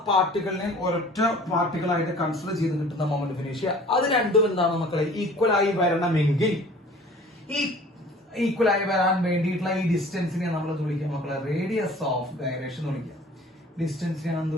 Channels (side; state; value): both; normal; correlation 0.48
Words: പാർട്ടികളിനെയും ഒരൊറ്റ പാർട്ടികളായിട്ട് കൺസിഡർ ചെയ്ത് കിട്ടുന്ന മൊമെന്റ് ഓഫ് ഇനേഷ്യ. അത് രണ്ടും എന്താണ് മക്കളെ? ഈക്വൽ ആയി വരണമെങ്കിൽ ഈ ഈക്വൽ ആയി വരാൻ വേണ്ടിയിട്ടുള്ള ഈ ഡിസ്റ്റൻസിനെ നമ്മൾ വിളിക്കുക മക്കളെ റേഡിയസ് ഓഫ് ഗൈറേഷൻ എന്ന് വിളിക്കുക. ഡിസ്റ്റൻസിനെ